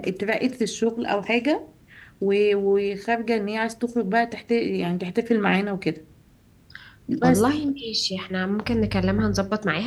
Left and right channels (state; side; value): identical; both; correlation 1.00